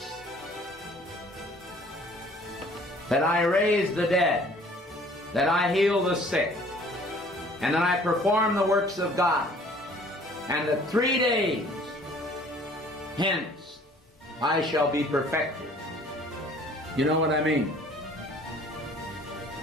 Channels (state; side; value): normal; both; correlation 0.54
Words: that I raise the dead, that I heal the sick, and that I perform the works of God, and that 3 days hence I shall be perfected." You know what I mean?